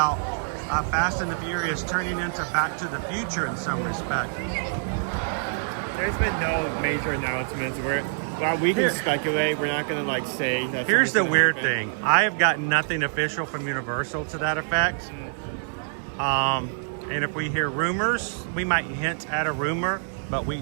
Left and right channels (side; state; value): left; silent; digital silence